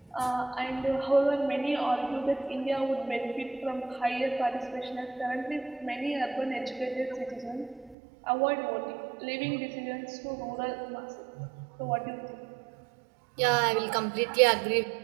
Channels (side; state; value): left; drops out; at 8.0 s